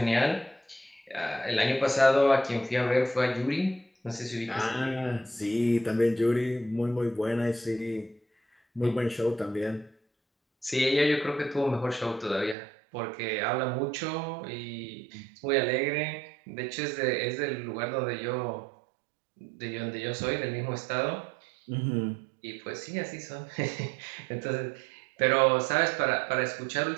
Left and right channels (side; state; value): left; drops out; at 12.6 s